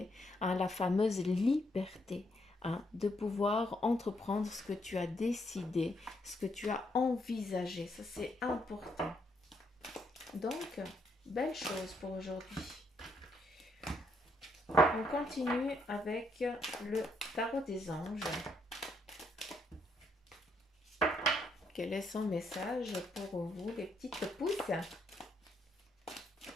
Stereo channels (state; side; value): normal; both; correlation 0.75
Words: hein, la fameuse liberté, hein, de pouvoir entreprendre ce que tu as décidé, ce que tu as envisagé. Ça, c'est important. Donc, belle chose pour aujourd'hui. On continue avec le tarot des anges. Quel est son message pour vous, les petites pousses?